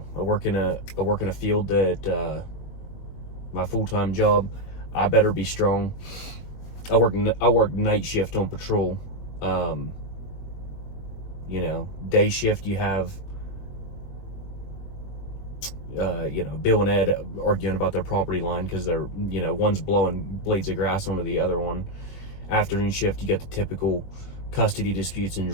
I work in a field that, my full-time job, I better be strong. I work night shift on patrol. You know, day shift you have, you know, Bill and Ed arguing about their property line because they're, you know, one's blowing blades of grass onto the other one. Afternoon shift, you get the typical custody disputes and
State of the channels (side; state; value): right; late; 21 ms